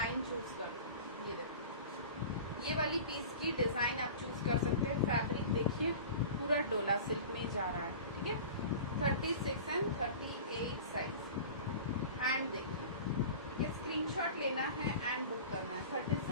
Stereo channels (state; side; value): inverted; both; correlation -0.37